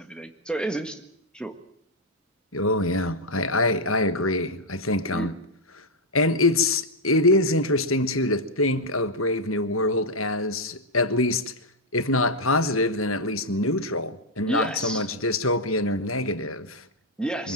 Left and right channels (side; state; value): both; normal; correlation -0.02